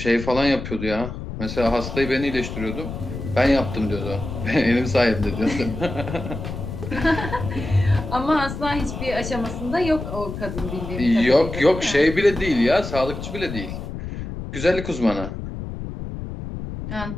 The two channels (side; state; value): left; noise; rumble, 7 dB below the sound